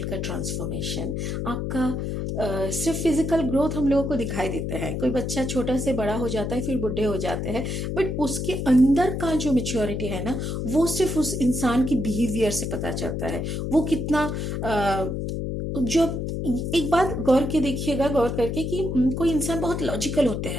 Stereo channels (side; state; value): left; noise; hum, 2 dB below the sound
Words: का ट्रांसफॉर्मेशन, आपका सिर्फ फिजिकल ग्रोथ हम लोगों को दिखाई देता है। कोई बच्चा छोटा से बड़ा हो जाता है, फिर बुढ़े हो जाते हैं, बट उसके अंदर का जो मेच्योरिटी है ना, वो सिर्फ उस इंसान की बिहेवियर से पता चलता है। वो कितना जो एक बात गौर करके कि कोई इंसान बहुत लॉजिकल होते